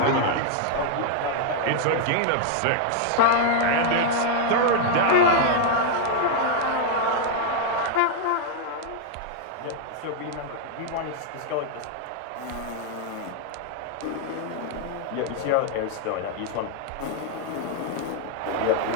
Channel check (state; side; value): different; both; correlation 0.00